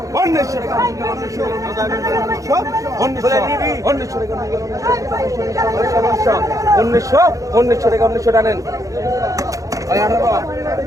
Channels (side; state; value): left; late; 0.16 ms